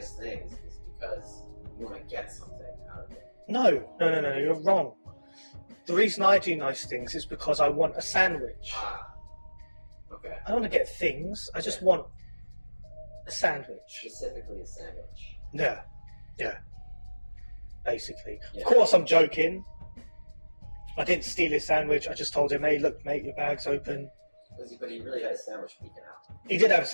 things is because you want to get something out of it. No, you're wrong. The reason I do nice things is because I want a sandwich. Okay. I don't want to get things, I just want a sandwich. Specifically a sandwich. Yeah. Basically. Yeah. Of course I'm joking. I didn't steal his sandwich, I just told him, hey look mate, your bag's open. But he really had a sandwich peeking out. He did have a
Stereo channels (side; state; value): both; inverted; correlation -1.00